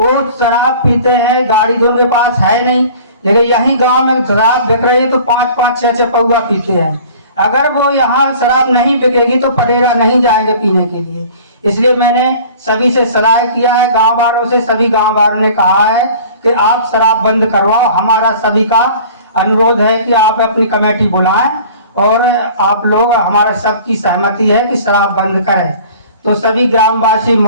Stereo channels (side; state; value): both; inverted; correlation -0.46